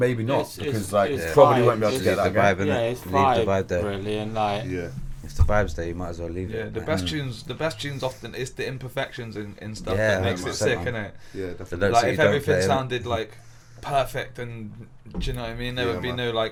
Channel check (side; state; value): both; identical; correlation 1.00